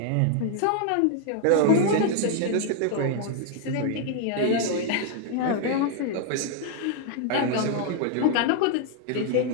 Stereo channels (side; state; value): both; different; correlation 0.00